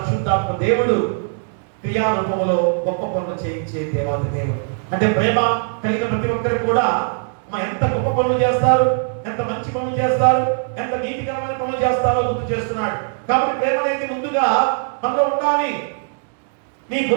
దేవుడు క్రియారూపంలో గొప్ప పనులు చేయించే దేవాది దేవుడు. అంటే ప్రేమ కలిగిన ప్రతి ఒక్కరికి కూడా ఎంత గొప్ప పనులు చేస్తారు, ఎంత మంచి పనులు చేస్తారు, ఎంత నీతికరమైన పనులు చేస్తారో గుర్తు చేస్తున్నాడు. కాబట్టి ప్రేమ అనేది ముందుగా మనలో ఉండాలి. నీ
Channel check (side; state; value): left; silent; 66 dB below the other